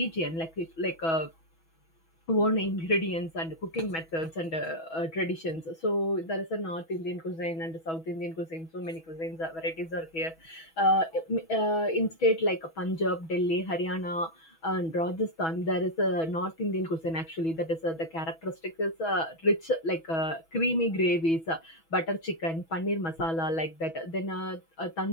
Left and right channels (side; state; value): right; late; 6.1 ms